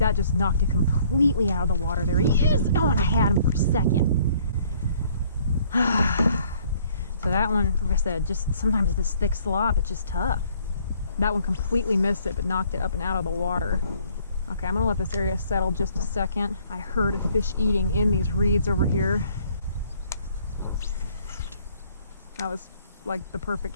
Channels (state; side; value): inverted; both; correlation -0.61